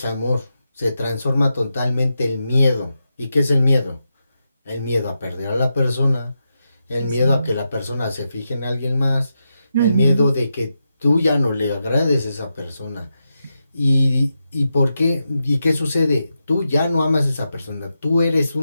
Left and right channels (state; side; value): inverted; both; correlation -0.87